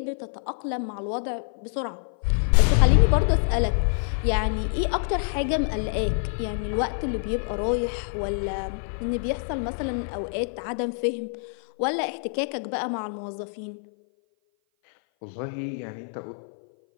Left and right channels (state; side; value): silent; right; 57 dB below the other